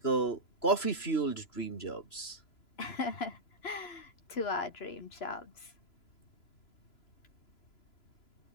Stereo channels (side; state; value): right; late; 3.0 ms